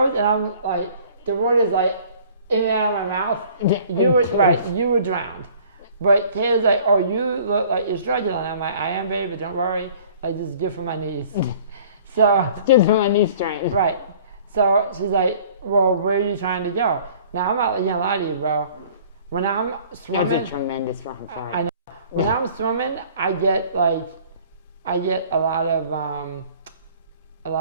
and I'm like, the water's like in and out of my mouth. You were drowned. But Kayla's like, oh, you look like you're struggling. I'm like, I am, baby, but don't worry. Like, this is good for my knees. So, good for my knee strength. Right. So she's like, well, where are you trying to go? Now, I'm not gonna lie to you, bro. When I'm swimming... That's a tremendous fucking part. I know. When I'm swimming, I get a lot of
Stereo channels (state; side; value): inverted; both; correlation -0.52